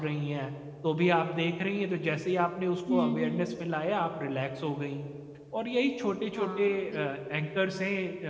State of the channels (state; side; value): identical; both; correlation 1.00